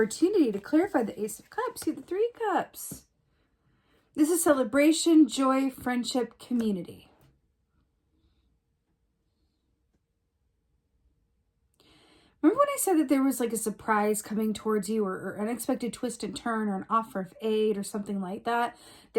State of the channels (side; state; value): both; identical; correlation 1.00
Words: to clarify the Ace of Cups. See the Three Cups. This is celebration, joy, friendship, community. Remember when I said that there was like a surprise coming towards you or unexpected twist and turn or an offer of aid or something like that